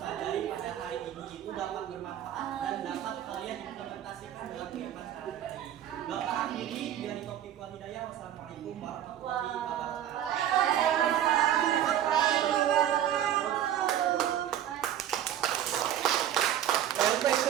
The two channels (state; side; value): quieter; left; 11.1 dB